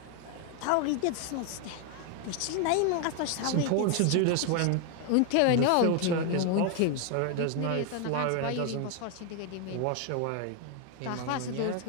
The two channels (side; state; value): both; different; correlation 0.01